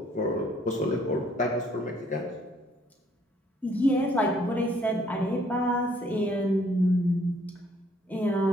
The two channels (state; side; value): normal; both; correlation 0.64